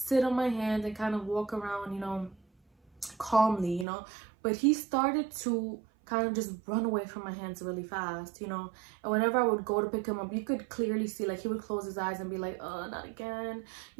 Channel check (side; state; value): left; drops out; at 3.9 s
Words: on my hand and kind of walk around, calmly, But he started to kind of just run away from my hands really fast, and whenever I would go to pick him up, you could clearly see, like, he would close his eyes and be like, oh, not again.